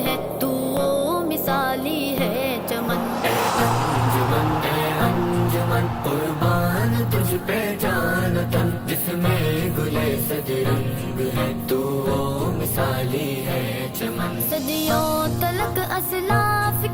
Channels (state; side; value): identical; both; correlation 1.00